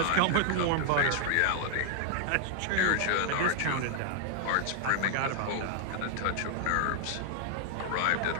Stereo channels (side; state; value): both; different; correlation 0.00